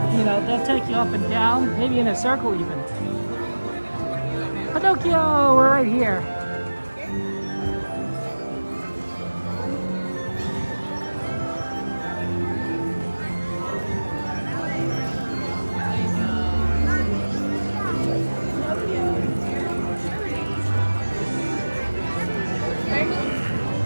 you know, they'll take you up and down, maybe in a circle even. Pinocchio, we're right here.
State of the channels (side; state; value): both; inverted; correlation -1.00